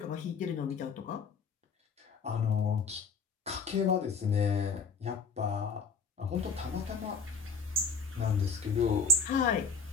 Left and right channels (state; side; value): quieter; right; 4.7 dB